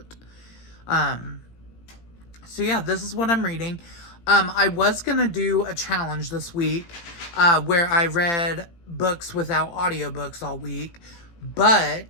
So yeah, this is what I'm reading. I was gonna do a challenge this week, where I read books without audiobooks all week,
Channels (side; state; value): right; late; 18 ms